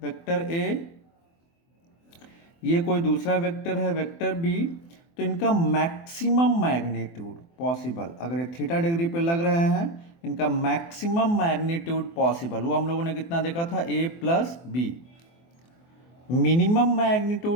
वेक्टर ए, ये कोई दूसरा वेक्टर है, वेक्टर बी, तो इनका मैक्सिमम मैग्नीट्यूड पॉसिबल, अगर ये थीटा डिग्री पे लग रहे हैं, इनका मैक्सिमम मैग्नीट्यूड पॉसिबल वो हम लोगों ने कितना देखा था? A plus B. Minimum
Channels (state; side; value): late; right; 24 ms